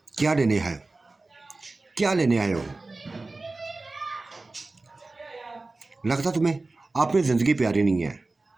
क्या लेने है, क्या लेने आए हो? लगता तुम्हें आपने जिंदगी प्यारी नहीं है,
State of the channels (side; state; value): left; quieter; 3.3 dB